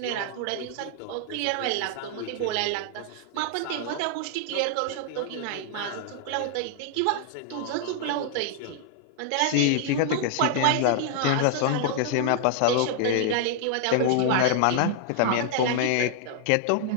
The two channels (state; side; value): different; both; correlation -0.01